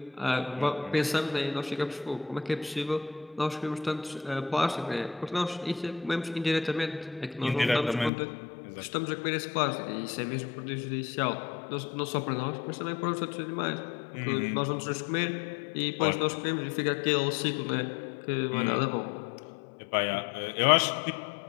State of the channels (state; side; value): drops out; right; at 8.1 s